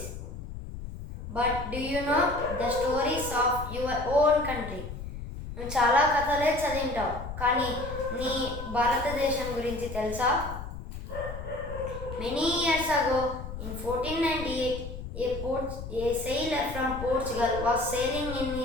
But do you know the stories of your own country? నువ్వు చాలా కథలే చదివింటావు, కానీ నీ భారతదేశం గురించి తెలుసా? Many years ago, in 1498, a sailor from Portugal was sailing in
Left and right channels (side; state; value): left; noise; rumble, 9 dB below the sound